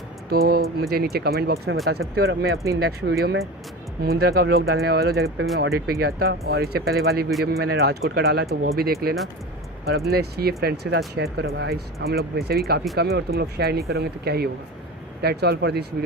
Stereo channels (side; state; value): both; normal; correlation 0.30